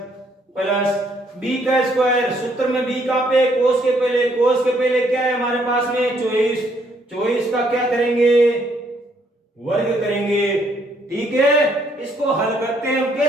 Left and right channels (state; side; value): normal; both; correlation 0.69